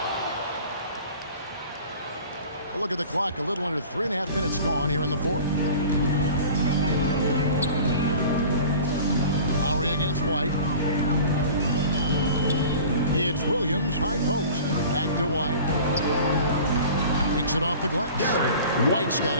A look at the clock. A little under 3.5 minutes gone here in the 4th. Lowry against White. It's Williams, high post. Back to White. Takes it off the glass. White's got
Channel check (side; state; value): both; inverted; correlation -0.42